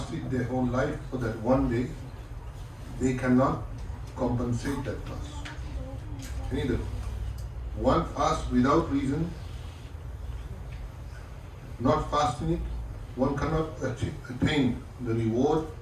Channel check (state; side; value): identical; both; correlation 1.00